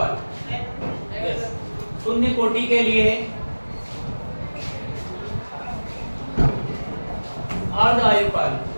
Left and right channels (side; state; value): both; inverted; correlation -1.00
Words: शून्य कोटि के लिए अर्धआयुकाल,